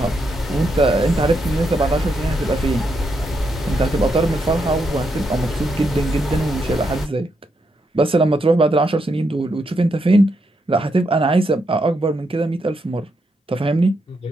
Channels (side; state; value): both; normal; correlation 0.81